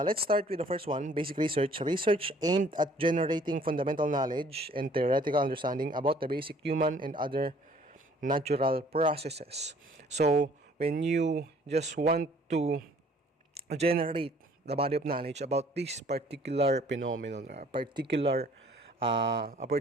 start with the first one, basic research. Research aimed at generating fundamental knowledge and theoretical understanding about the basic human and other natural processes. So when you just want to generate the body of knowledge about this particular phenomenon, a particular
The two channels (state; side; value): normal; both; correlation 0.57